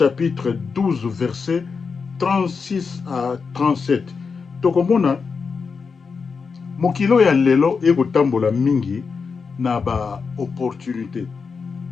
12 verset 36 à 37 tokomona mokilo ya lelo ekotambola mingi na ba opportunité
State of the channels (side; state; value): right; quieter; 5.2 dB